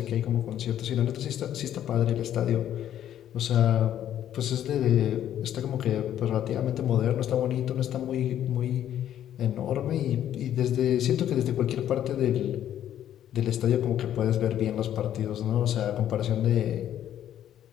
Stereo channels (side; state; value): right; quieter; 11.0 dB